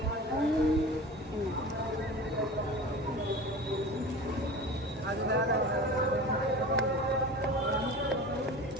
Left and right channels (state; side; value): normal; both; correlation 0.35